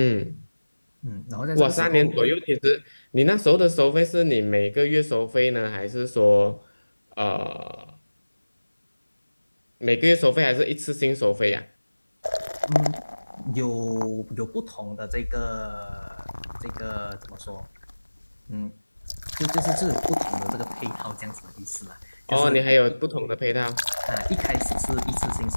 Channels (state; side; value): inverted; both; correlation -1.00